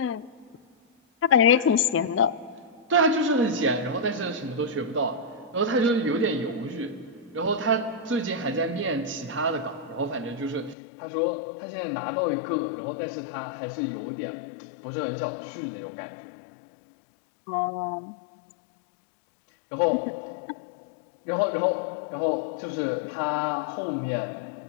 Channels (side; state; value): right; drops out; at 10.8 s